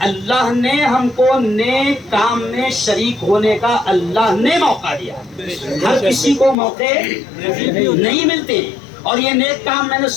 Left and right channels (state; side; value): drops out; right; at 6.6 s